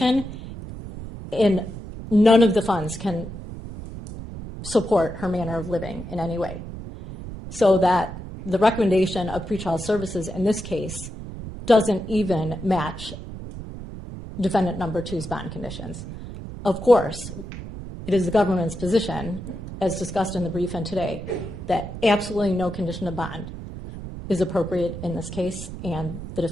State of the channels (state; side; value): noise; right; rumble, 10 dB below the sound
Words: and none of the funds can support her manner of living in any way. So that the recommendation of pretrial services in this case doesn't even match defendant number 2's bond conditions. Of course, it is the government's position, as discussed in the brief and today, that absolutely no condition of bond is appropriate in this case, and the